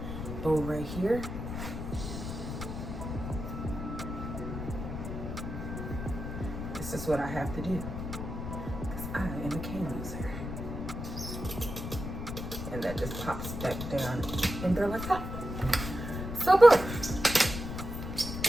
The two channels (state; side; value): noise; left; rumble, 6 dB below the sound